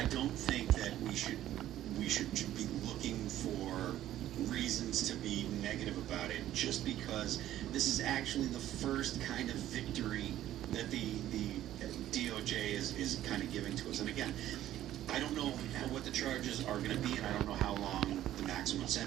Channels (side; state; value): left; quieter; 12.9 dB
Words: don't think that we should be looking for reasons to be negative about it, just because this is actually the first kind of victory that the DOJ is kind of giving to us. And again, I don't know what the charges are going to be, and I don't know how long the maximum